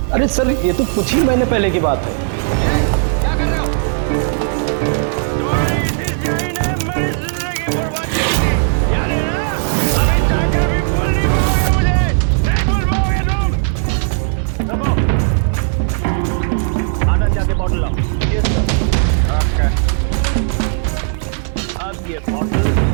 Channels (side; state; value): left; silent; digital silence